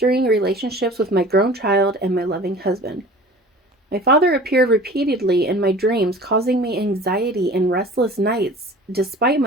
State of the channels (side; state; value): both; normal; correlation 0.43